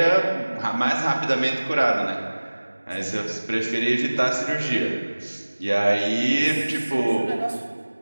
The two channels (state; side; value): inverted; both; correlation -1.00